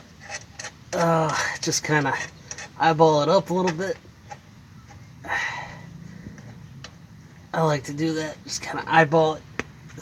just kind of eyeball it up a little bit. I like to do that, just kind of eyeball it,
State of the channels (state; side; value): identical; both; correlation 1.00